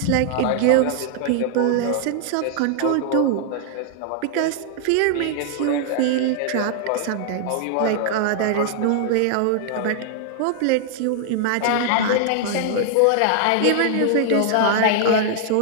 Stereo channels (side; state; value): both; different; correlation -0.01